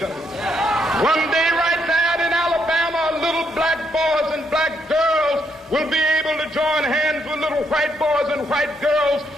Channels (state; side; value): normal; both; correlation 0.75